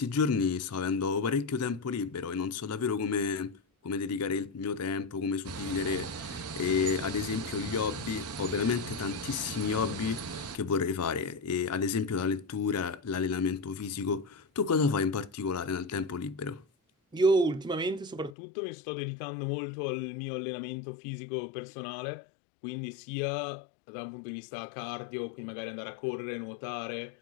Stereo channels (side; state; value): right; drops out; at 18.4 s